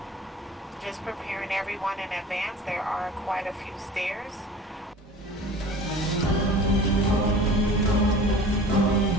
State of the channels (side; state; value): both; normal; correlation 0.41